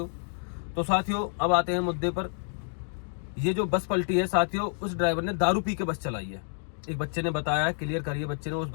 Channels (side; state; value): right; silent; digital silence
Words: तो साथियों, अब आते हैं मुद्दे पर। ये जो बस पलटी है साथियों, उस ड्राइवर ने दारू पी के बस चलाई है। एक बच्चे ने बताया है, क्लियर करिए, बच्चे ने, उस